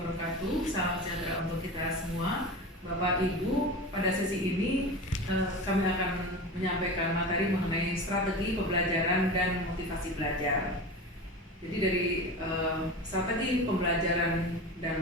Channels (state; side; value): normal; both; correlation 0.29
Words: Salam sejahtera untuk kita semua. Bapak Ibu, pada sesi ini kami akan menyampaikan materi mengenai strategi pembelajaran dan motivasi belajar. Jadi dari strategi pembelajaran